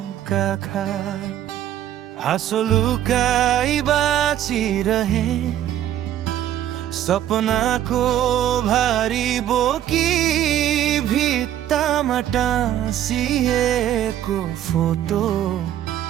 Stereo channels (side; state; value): left; quieter; 11.7 dB